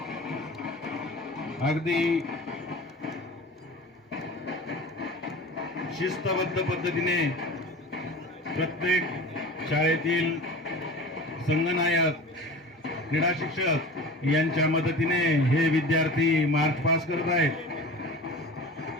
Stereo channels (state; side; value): normal; both; correlation 0.36